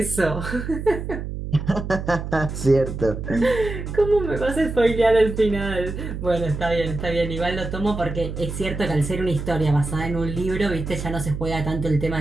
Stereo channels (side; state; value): right; noise; hum, 6 dB below the sound